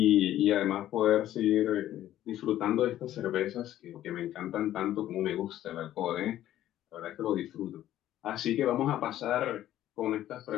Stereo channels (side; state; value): right; quieter; 12.9 dB